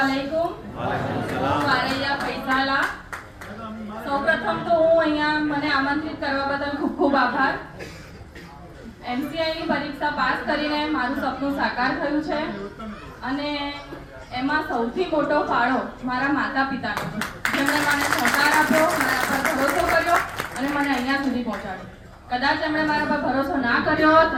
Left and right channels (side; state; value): both; identical; correlation 1.00